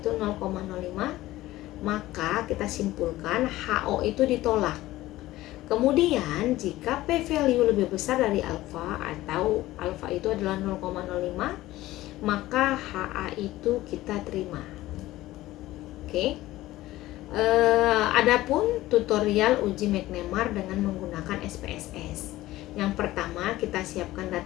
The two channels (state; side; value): quieter; right; 16.6 dB